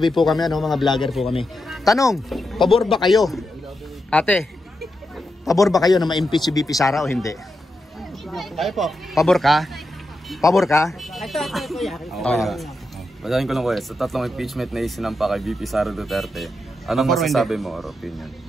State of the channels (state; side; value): normal; both; correlation 0.86